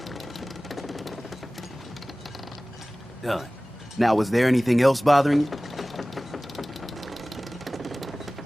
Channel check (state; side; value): normal; both; correlation 0.98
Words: Done. Now, was there anything else bothering you?